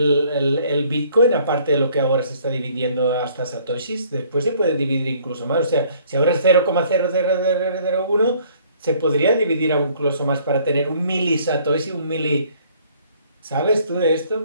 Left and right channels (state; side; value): inverted; both; correlation -0.59